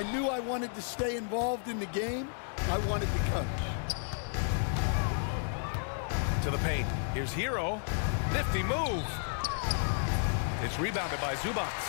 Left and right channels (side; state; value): right; silent; digital silence